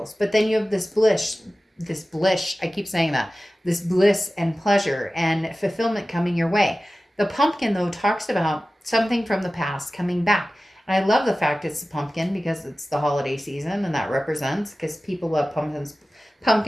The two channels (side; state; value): both; normal; correlation 0.96